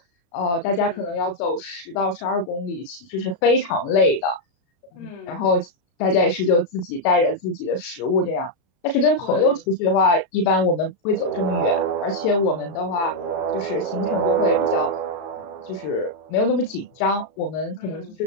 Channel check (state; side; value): late; right; 35 ms